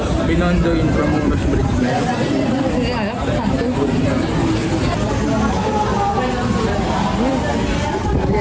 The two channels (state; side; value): identical; both; correlation 1.00